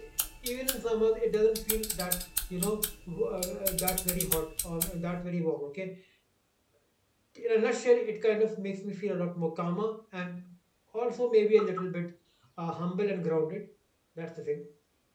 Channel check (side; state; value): both; identical; correlation 1.00